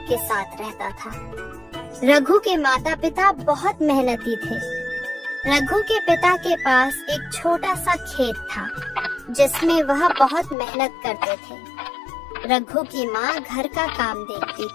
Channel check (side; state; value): right; drops out; at 10.6 s